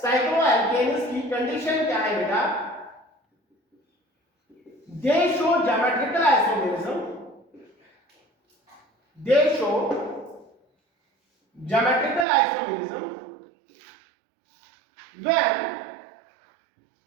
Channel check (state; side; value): drops out; left; at 12.2 s